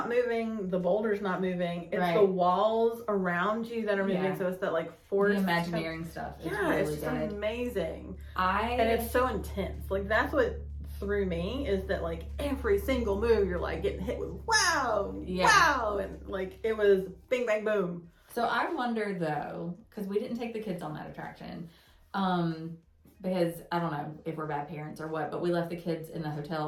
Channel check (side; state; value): both; identical; correlation 1.00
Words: moving, the boulder's not moving, it's the walls around you that are moving, so it's that, like, force. The Imagineering stuff is really it's just good. Amazing. And it's so intense. Like, that's what threw me, is that, like, every single move you're, like, getting hit with wow, and, like, it was bing, bang, boom. So I wonder, though, because we didn't take the kids on that attraction, because I don't know if we're bad parents or what, but we left the kids in the